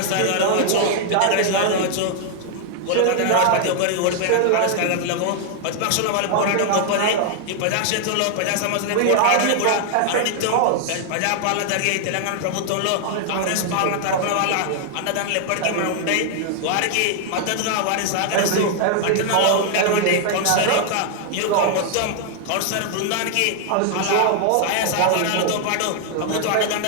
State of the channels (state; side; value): different; both; correlation 0.00